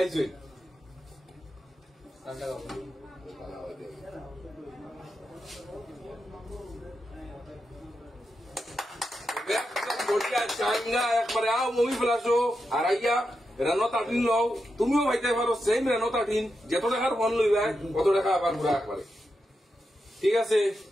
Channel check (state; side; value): normal; both; correlation 0.87